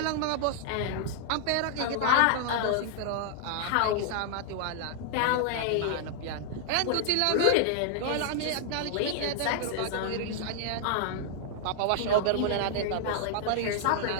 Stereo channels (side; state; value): both; different; correlation 0.00